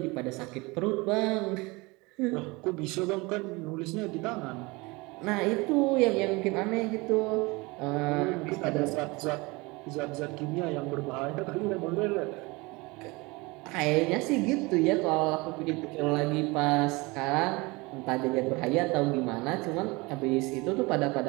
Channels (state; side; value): quieter; left; 24.7 dB